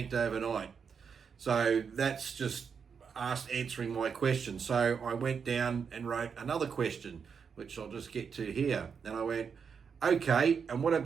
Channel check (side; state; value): left; quieter; 6.3 dB